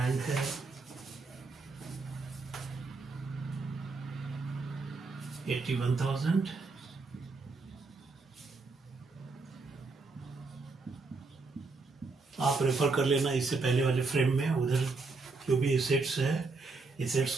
है $81,000। आप रेफर कर लेना इससे पहले वाले फ्रेम में, उधर जो भी एसेट्स है एसेट्स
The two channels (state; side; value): quieter; left; 3.9 dB